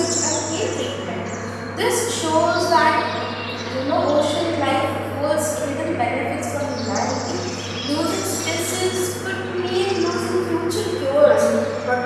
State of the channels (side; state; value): both; identical; correlation 1.00